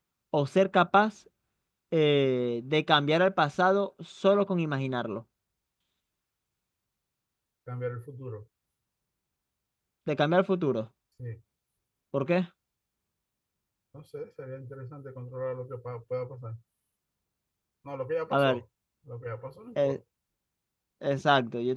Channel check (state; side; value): identical; both; correlation 1.00